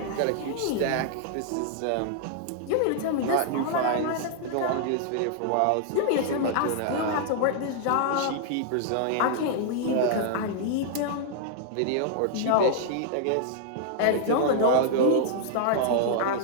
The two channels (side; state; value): both; different; correlation -0.01